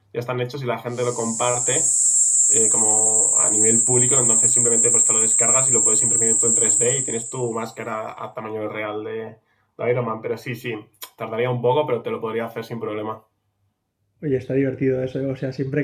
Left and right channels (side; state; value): both; identical; correlation 1.00